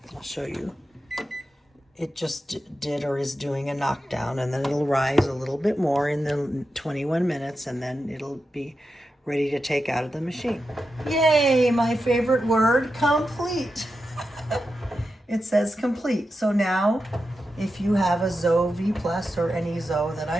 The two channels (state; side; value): normal; both; correlation 0.89